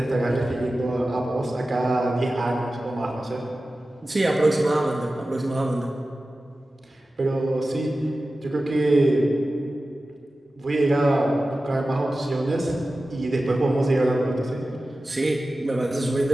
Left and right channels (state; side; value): normal; both; correlation 0.95